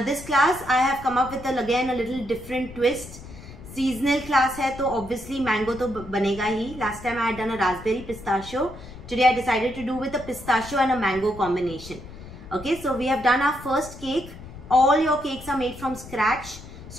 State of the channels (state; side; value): noise; left; rumble, 15 dB below the sound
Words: this class I have come up with again a little different twist. Seasonal class hai to obviously mango to banega hi. Last time I had done a raspberry pistachio. Today I decided to do with a pistachio and a mango combination. Okay, so we have done our first cake. All your cakes are made from scratch.